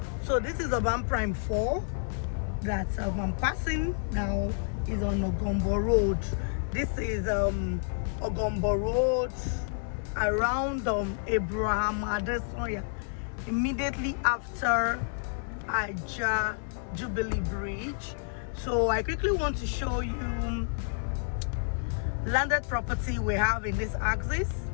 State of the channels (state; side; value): silent; right; digital silence